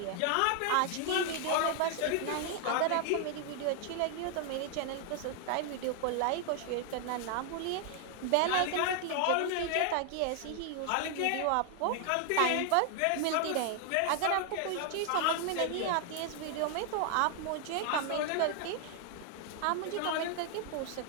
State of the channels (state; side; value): different; both; correlation 0.00